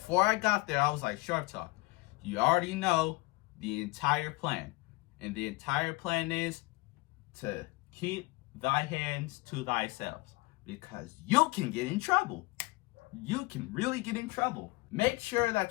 I got there, I was like, Sharp Talk, you already know the entire plan. And the entire plan is to keep thy hands to thyself. Because you can get in trouble. You can really get in trouble. Make sure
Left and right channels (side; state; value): right; quieter; 22.7 dB